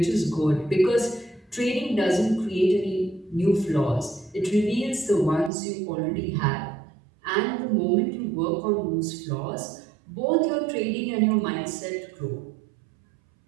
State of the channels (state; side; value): drops out; left; at 5.5 s